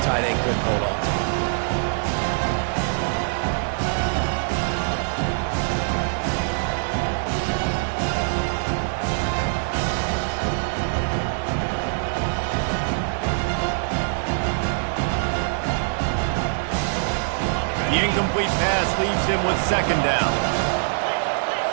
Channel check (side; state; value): left; silent; digital silence